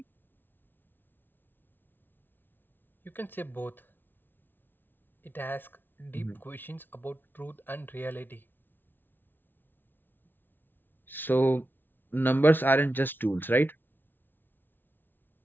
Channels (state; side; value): late; right; 0.096 ms